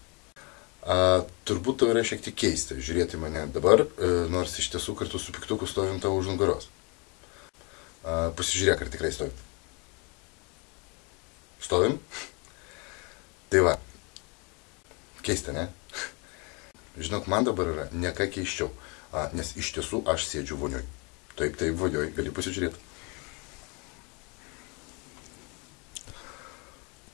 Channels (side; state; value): right; quieter; 31.5 dB